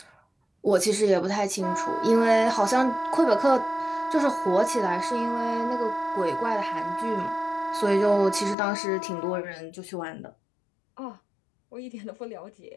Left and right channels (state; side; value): drops out; right; at 8.6 s